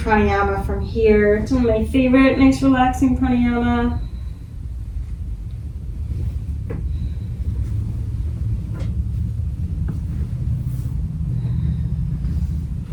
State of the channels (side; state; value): both; identical; correlation 1.00